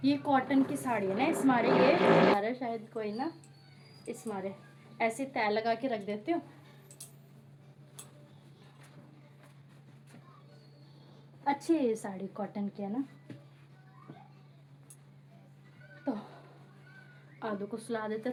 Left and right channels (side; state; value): both; identical; correlation 1.00